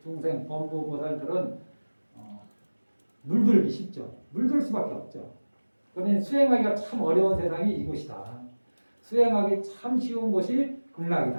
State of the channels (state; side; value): inverted; both; correlation -1.00